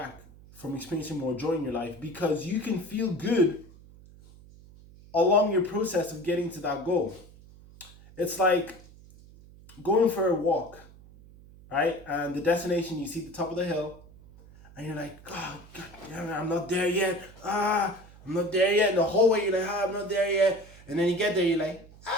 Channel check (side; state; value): right; noise; hum, 22 dB below the sound